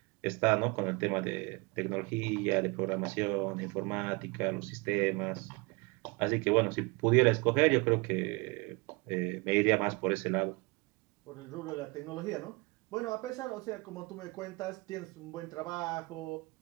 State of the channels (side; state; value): left; quieter; 27.0 dB